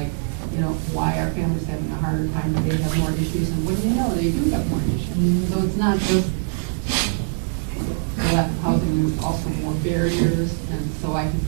why are families having a harder time, they have more issues, and what do you know, they do have more issues. So it's not just lack of housing, there's also more barriers, and so I can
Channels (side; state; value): left; silent; digital silence